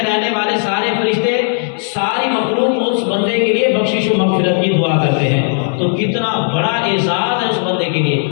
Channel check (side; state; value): right; silent; digital silence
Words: رہنے والے سارے فرشتے، ساری مخلوق اس بندے کے لیے بخشش و مغفرت کی دعا کرتے ہیں، تو کتنا بڑا اعزاز ہے اس بندے کے لیے۔